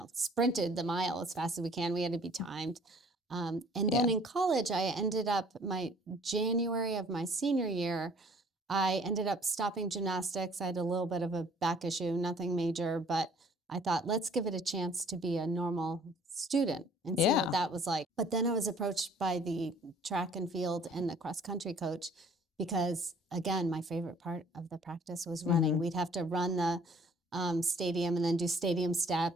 sprinted the mile as fast as we can. We had to be timed. And then in college, I ended up, January of my senior year, I ended up stopping gymnastics. I had a little bit of a back issue, nothing major, but I thought, let's give it a chance to be a normal student and see what that was like. But then I was approached by the track and field and the cross country coach because, again, my favorite part of the practice was running. We'd have to run the stadium and then do stadium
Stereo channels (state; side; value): normal; both; correlation 0.55